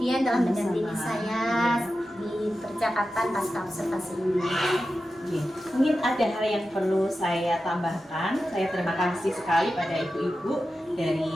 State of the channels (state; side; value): normal; both; correlation 0.92